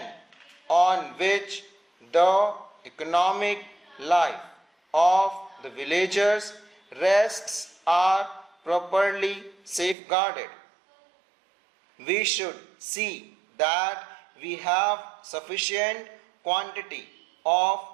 on which the economic life of the villagers rests are properly safeguarded. We should see that we have sufficient quantity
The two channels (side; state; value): left; drops out; at 10.0 s